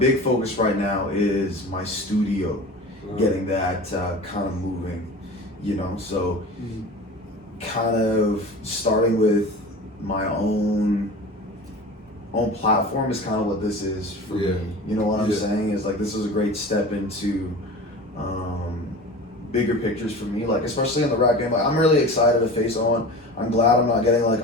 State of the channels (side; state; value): both; normal; correlation 0.35